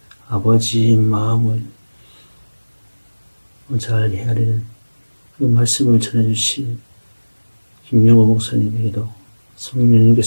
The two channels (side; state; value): both; inverted; correlation -1.00